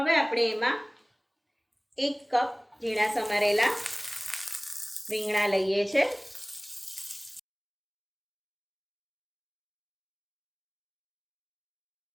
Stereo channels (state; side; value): identical; both; correlation 1.00